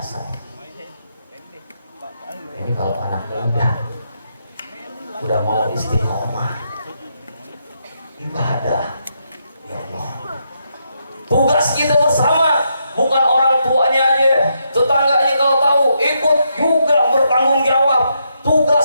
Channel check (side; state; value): both; inverted; correlation -0.80